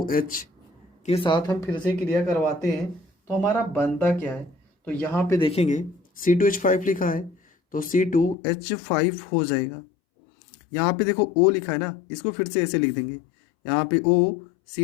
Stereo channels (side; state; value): right; drops out; at 8.3 s